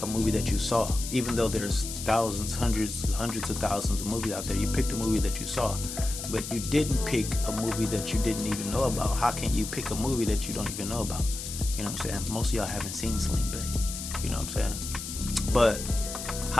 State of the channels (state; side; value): noise; left; hiss, 7 dB below the sound